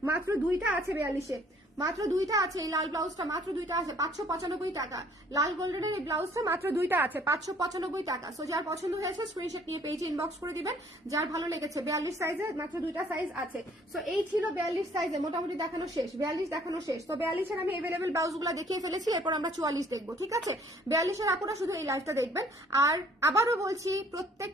মাত্র 2টা আছে 42-এ, মাত্র 2টা আছে। এই লাল ব্লাউজটা মাত্র 2টা আছে, 595 টাকা। লাল গোল্ডেনের এই ব্লাউজটা মাত্র 2টা আছে, 595 টাকা। সো যার পছন্দ হয়েছে স্ক্রিনশট নিয়ে পেজে ইনবক্স করে দিবেন। যার ভালো লেগেছে 42 সাইজে মাত্র 2টা সাইজ আছে। সো এই ছিল 42 সাইজে, মোটামুটি দেখানো শেষ, 42 দেখানো শেষ। তো 42-এর আমি अवेलेबल ব্লাউজগুলো দেখিয়ে ফেলেছি, এরপর আমরা 44 দেখবো, ঠিক আছে? 42-এর আপুরা শুধু এই লাইভটা দেখবেন। আর আবারও বলছি,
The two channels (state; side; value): normal; both; correlation 0.59